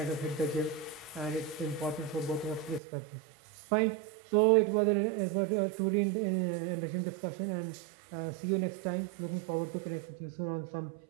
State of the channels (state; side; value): drops out; left; at 2.8 s